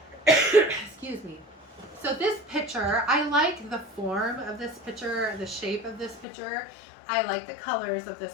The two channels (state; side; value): drops out; right; at 6.2 s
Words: Excuse me. So this picture, I like the form of this picture, the shape of this picture. I like the colors of